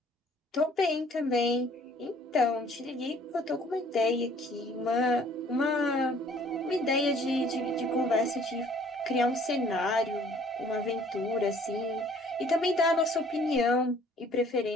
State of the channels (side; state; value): both; normal; correlation 0.57